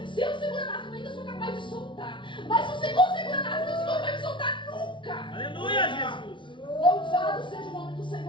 se eu segurar nas mãos, eu ainda sou capaz de soltar. Mas se o Senhor segurar nas mãos, o Senhor não vai me soltar nunca. Aleluia, Jesus. Louvado seja o nome do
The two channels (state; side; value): late; right; 0.24 ms